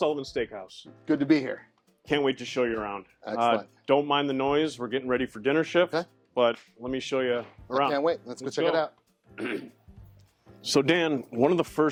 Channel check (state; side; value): identical; both; correlation 1.00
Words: Steakhouse. Good to be here. Can't wait to show you around. Excellent. Don't mind the noise, we're getting ready for dinner shift, Okay. But let me show you around. I can't wait, let's go check it out. So Dan, one of the